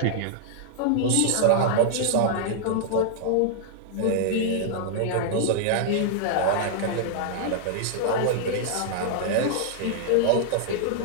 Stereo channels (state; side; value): different; both; correlation -0.01